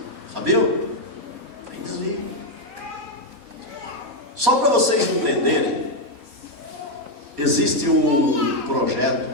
Sabiam? Tem desvio. Só para vocês entenderem, existe um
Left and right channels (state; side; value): late; left; 4.2 ms